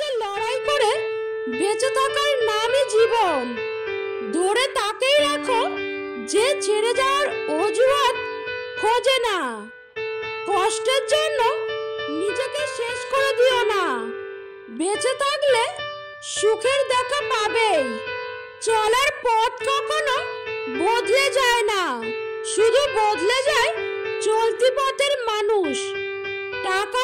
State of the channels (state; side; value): identical; both; correlation 1.00